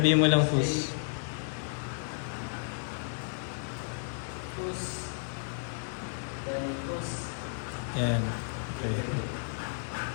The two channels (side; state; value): right; silent; 56 dB below the other